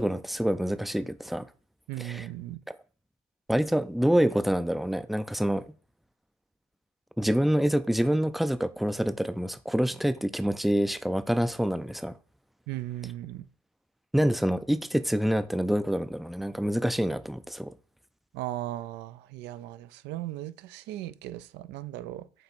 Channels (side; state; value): both; normal; correlation 0.96